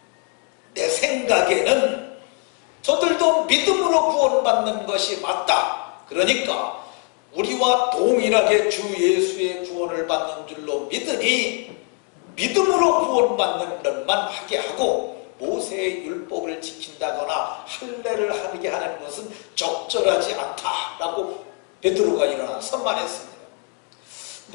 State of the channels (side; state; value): right; quieter; 33.5 dB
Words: 내 생각에는 저들도 믿음으로 구원받는 것이 맞다. 그러니까 우리와 동일하게 주 예수의 구원을 받는 줄로 믿으니 믿음으로 구원받는 것만 하게 하고 모세의 율법을 지킨다거나 할례를 하게 하는 것은 적절하지 않다 라고 베드로가 일어나서 말했습니다.